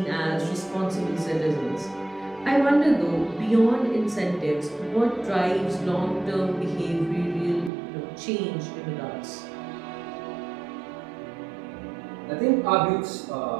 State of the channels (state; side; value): drops out; left; at 7.7 s